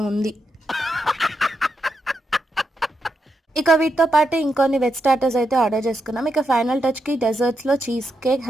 ఉంది. ఇక వీటితో పాటు ఇంకొన్ని వెజ్ స్టార్టర్స్ అయితే ఆర్డర్ చేసుకున్నాం. ఇక ఫైనల్ టచ్ కి డెజర్ట్స్ లో cheese cake,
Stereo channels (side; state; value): both; normal; correlation 0.83